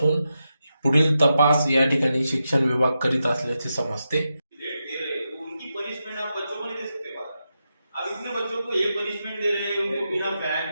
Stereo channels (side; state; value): both; inverted; correlation -0.88